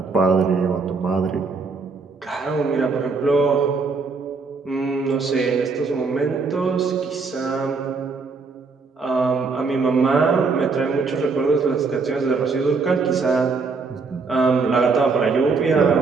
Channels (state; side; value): quieter; left; 4.5 dB